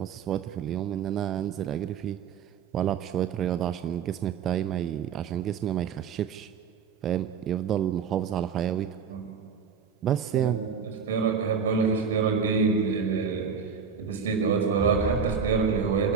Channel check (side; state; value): left; quieter; 6.5 dB